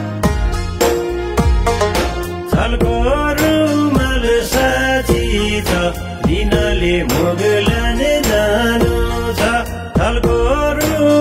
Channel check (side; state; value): both; identical; correlation 1.00